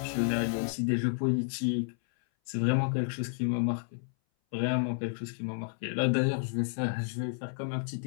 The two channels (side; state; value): right; silent; 57 dB below the other